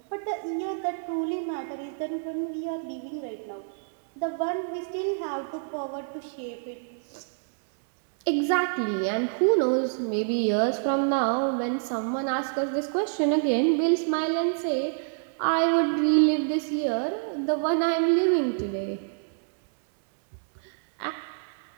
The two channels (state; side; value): silent; left; digital silence